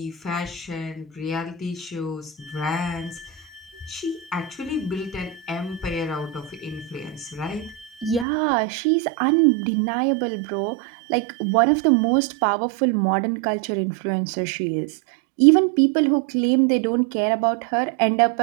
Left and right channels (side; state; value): left; drops out; at 8.2 s